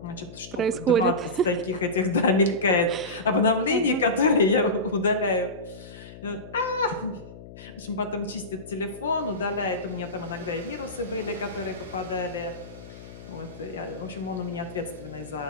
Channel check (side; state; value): left; noise; hum, 16 dB below the sound